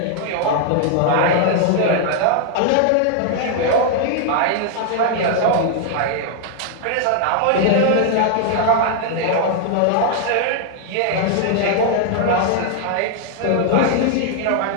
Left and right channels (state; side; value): different; both; correlation 0.00